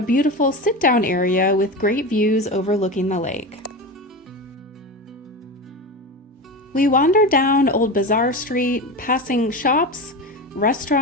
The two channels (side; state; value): both; normal; correlation 0.24